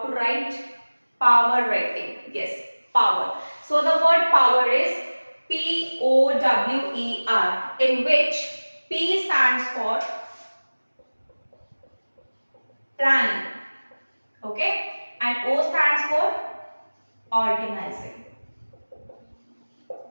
write power writing. Yes, power. So the word power is P-O-W-E-R, in which P stands for planning, okay, and O stands for organizing.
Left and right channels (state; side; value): inverted; both; correlation -1.00